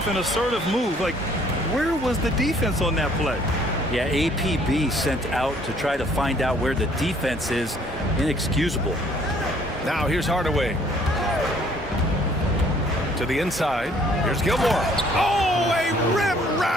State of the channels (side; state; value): both; normal; correlation 0.60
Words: an assertive move. Like, where was the defense on that play? Yeah, APB sent out to try to find out where the defense is. Inexcusable. Now here's Hardaway. To the inside. Here's Gilmore. Oh, a